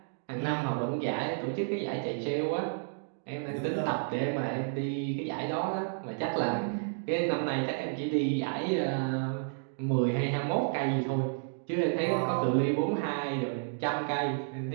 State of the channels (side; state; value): left; silent; digital silence